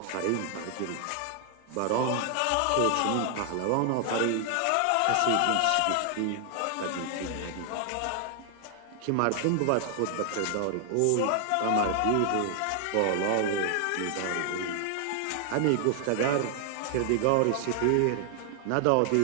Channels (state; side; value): different; both; correlation 0.00